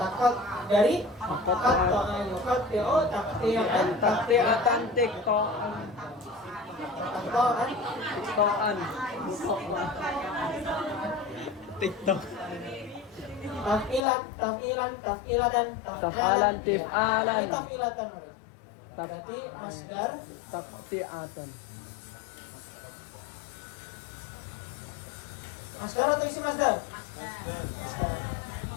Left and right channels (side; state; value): right; drops out; at 14.0 s